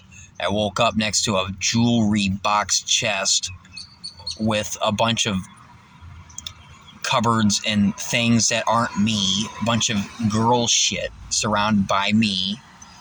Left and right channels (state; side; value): identical; both; correlation 1.00